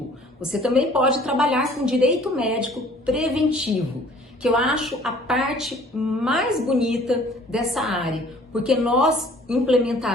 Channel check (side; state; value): both; normal; correlation 0.53